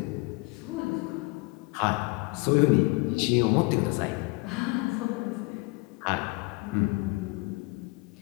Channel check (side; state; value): right; quieter; 26.6 dB